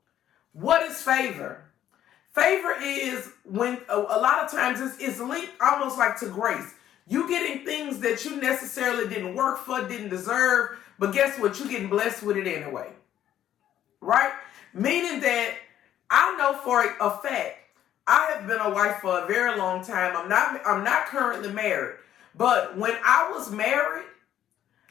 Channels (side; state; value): right; quieter; 11.3 dB